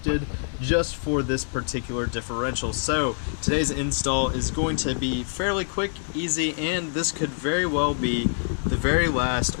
just for this particular differential. So today's install is going to be fairly quick, easy, and this could very well be the very last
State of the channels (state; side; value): silent; right; 61 dB below the other